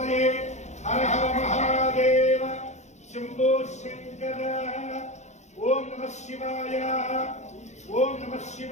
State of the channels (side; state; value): right; late; 0.33 ms